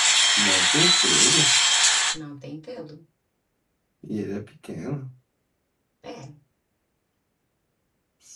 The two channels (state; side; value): identical; both; correlation 1.00